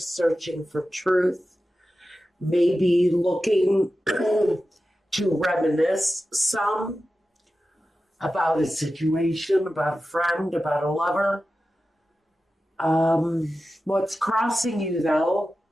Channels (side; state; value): both; normal; correlation 0.93